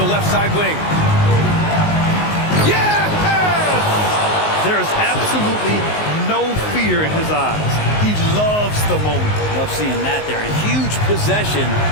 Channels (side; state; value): right; late; 19 ms